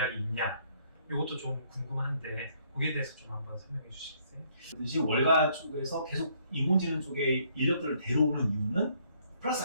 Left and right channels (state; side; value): inverted; both; correlation -0.67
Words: 있냐, 이것도 좀 궁금한데 거기에 대해서 좀 한번 설명해 주시겠어요? 그듯이 월가 쪽에서 계속 인공지능 쪽에 인력들을 데려오는 이유는 플러스